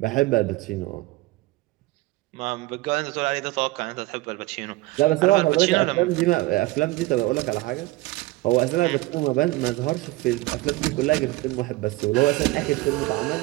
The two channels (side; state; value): left; quieter; 19.9 dB